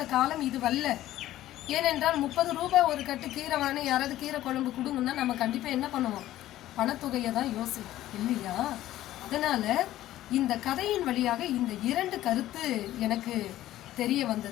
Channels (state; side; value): quieter; right; 14.2 dB